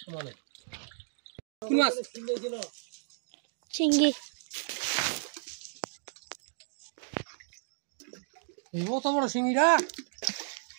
সমানে কি মাছ কিনে দিল চিংড়ি এই কত বড় শিঙিরা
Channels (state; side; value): silent; left; 56 dB below the other